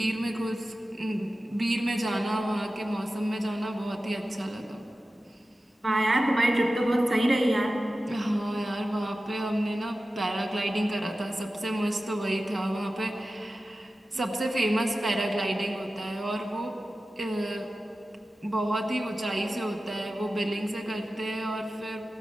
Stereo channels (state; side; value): normal; both; correlation 0.94